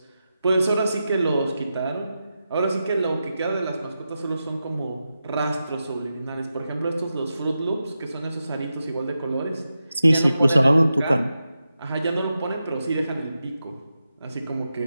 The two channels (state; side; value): inverted; both; correlation -0.90